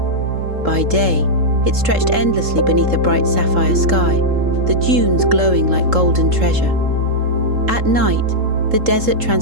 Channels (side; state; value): left; late; 3.7 ms